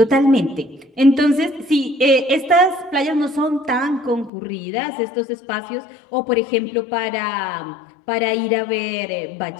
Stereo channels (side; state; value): right; drops out; at 4.3 s